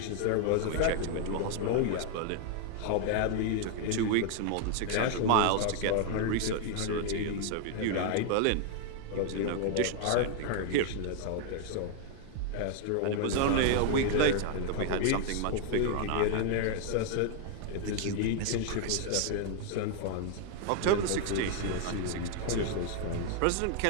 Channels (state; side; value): different; both; correlation 0.00